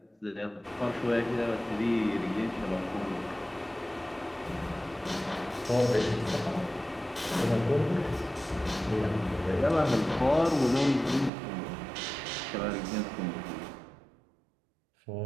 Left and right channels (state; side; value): drops out; left; at 11.3 s